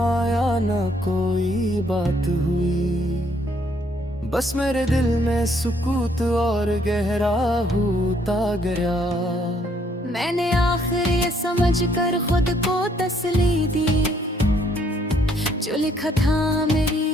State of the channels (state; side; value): normal; both; correlation 0.68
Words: न कोई बात हुई, बस मेरे दिल में सुकूत और गहरा होता गया। मैंने आखिर ये समझ कर खुद को तसल्ली दी, जो लिखा था मेरी